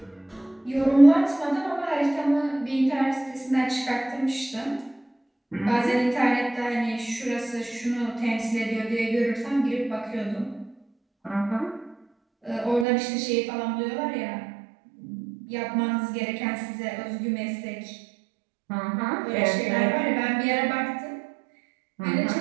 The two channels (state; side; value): drops out; left; at 12.9 s